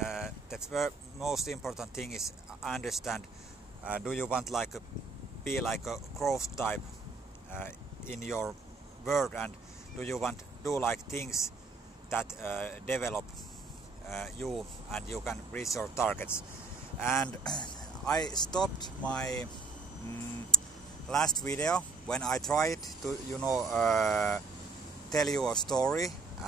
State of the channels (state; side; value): quieter; left; 3.9 dB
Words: most important thing is understand, do you want be like a growth type in your world, and do you want to do like things that develop you and you can reach your targets. And I stopped my last video when I tried to tell you a story